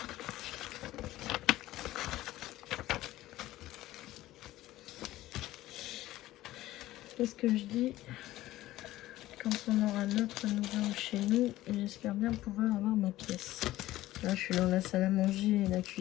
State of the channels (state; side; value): quieter; right; 15.8 dB